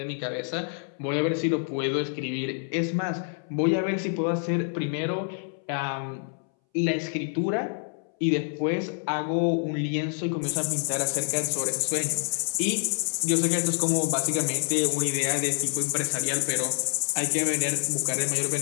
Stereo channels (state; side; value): silent; right; 60 dB below the other